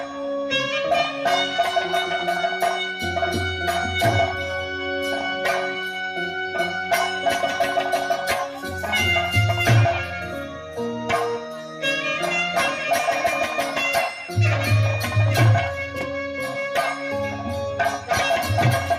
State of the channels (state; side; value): identical; both; correlation 1.00